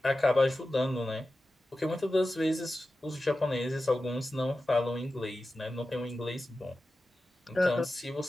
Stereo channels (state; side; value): normal; both; correlation 0.93